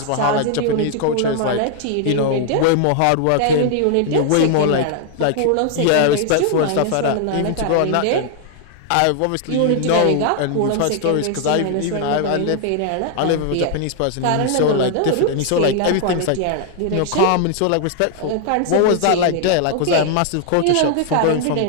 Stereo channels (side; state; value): both; different; correlation 0.00